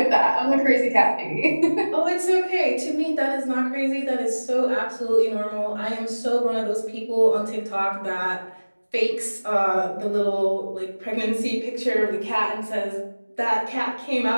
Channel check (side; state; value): both; inverted; correlation -1.00